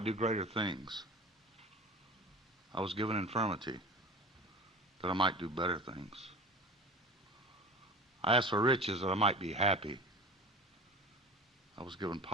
do greater things. I was given infirmity that I might do better things. I asked for riches that I might be happy. I was given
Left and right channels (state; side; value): normal; both; correlation 0.36